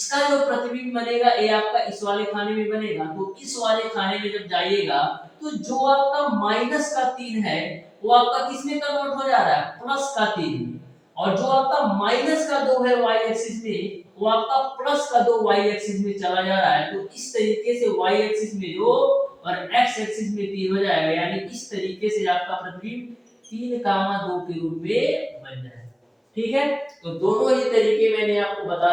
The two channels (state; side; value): identical; both; correlation 1.00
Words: जो प्रतिबिंब बनेगा ये आपका इस वाले खाने में बनेगा। तो इस वाले खाने में जब जाइएगा तो जो आपका माइनस का 3 है वो आपका किस में कन्वर्ट हो जा रहा है, प्लस का 3 में। और जो आपका माइनस का 2 है y एक्सिस में, वो आपका प्लस का 2 y एक्सिस में चला जा रहा है। तो इस तरीके से y एक्सिस में 2 और x एक्सिस में 3 हो जाएगा, यानी इस तरीके से आपका प्रतिबिंब 3 कामा 2 के रूप में बन जाएगा। ठीक है, तो दोनों ही तरीके मैंने आपको